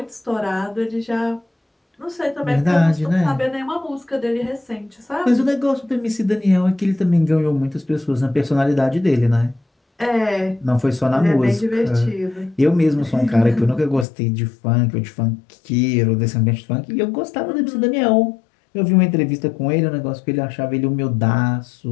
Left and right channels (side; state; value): right; drops out; at 14.1 s